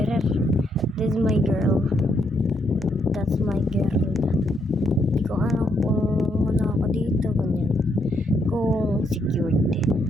This is my girl. That's my girl. Hindi ko alam kung ano ako dito. Ganyan. Kung secured.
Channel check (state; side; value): normal; both; correlation 0.75